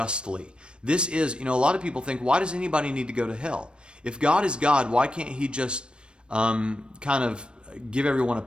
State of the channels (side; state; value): left; late; 0.055 ms